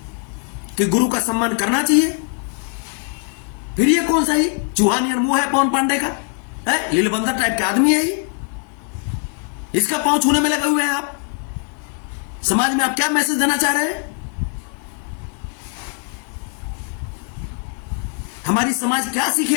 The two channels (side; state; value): right; quieter; 38.2 dB